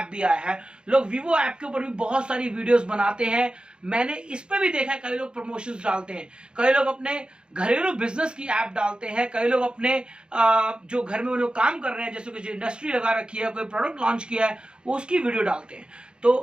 भी आया है। लोग वीवो ऐप के ऊपर भी बहुत सारी वीडियोस बनाते हैं, मैंने इस पे भी देखा है, कई लोग प्रमोशंस डालते हैं, कई लोग अपने घरेलू बिजनेस की ऐप डालते हैं, कई लोग अपने जो घर में वो लोग काम कर रहे हैं, जैसे कुछ इंडस्ट्री लगा रखी है, कोई प्रोडक्ट लॉन्च किया है, वो उसकी वीडियो डालते हैं।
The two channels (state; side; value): late; left; 0.051 ms